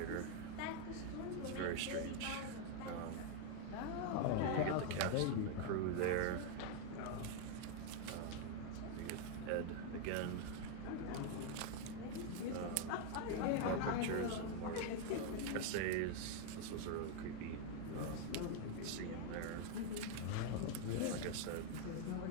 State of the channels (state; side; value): different; both; correlation 0.00